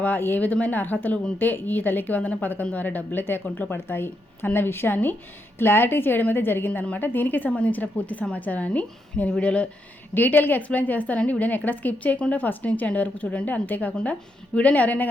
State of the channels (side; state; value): both; normal; correlation 0.81